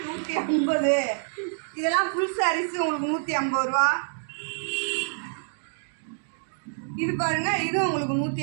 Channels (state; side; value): silent; left; digital silence